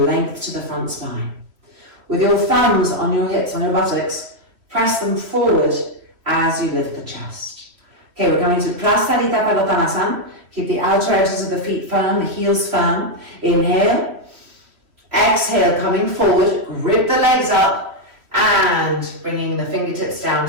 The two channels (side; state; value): left; late; 3.1 ms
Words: length to the front spine. With your thumbs on your hips, on your buttocks, press them forward as you lift the chest. Okay, we're going to Prasarita Padottanasana. Keep the outer edges of the feet firm, the heels firm. Inhale. Exhale, coming forward, grip the legs up and bringing the fingertips down